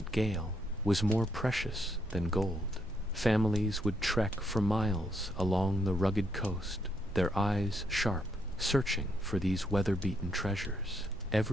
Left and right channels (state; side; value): normal; both; correlation 0.76